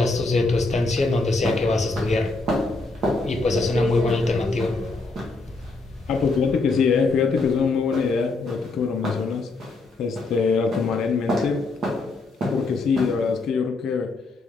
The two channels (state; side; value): quieter; right; 3.5 dB